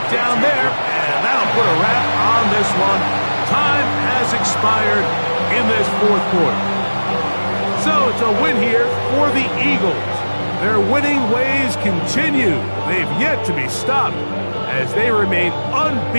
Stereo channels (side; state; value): both; inverted; correlation -1.00